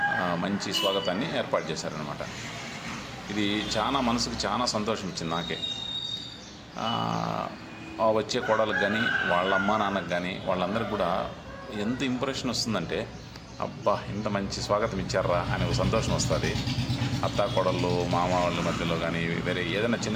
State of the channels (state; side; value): identical; both; correlation 1.00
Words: మంచి స్వాగతాన్ని ఏర్పాటు చేశారనమాట. ఇది చాలా మనసుకు చాలా సంతోషం ఇచ్చింది నాకే. వచ్చే కోడలకు కానీ వాళ్ళ అమ్మ నాన్నకు కానీ వాళ్ళందరికీ కూడా ఎంత ఇంప్రెషన్ వస్తుందంటే, అబ్బా ఇంత మంచి స్వాగతం ఇచ్చారా అనే ఒక సంతోషం వస్తుంది. అత్త కోడళ్ళు మామ వాళ్ళ మధ్యలో కానీ వేరే ఏదైనా